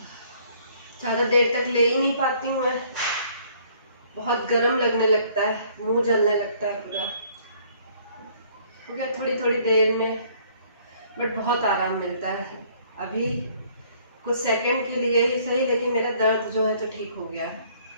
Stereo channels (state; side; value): inverted; both; correlation -0.60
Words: ज़्यादा देर तक ले ही नहीं पाती हूँ मैं, बहुत गर्म लगने लगता है, मुंह जलने लगता है पूरा। हो गया थोड़ी थोड़ी देर में, बट बहुत आराम मिलता है। अभी कुछ सेकंड के लिए ही सही, लेकिन मेरा दर्द जो है तो ठीक हो गया है,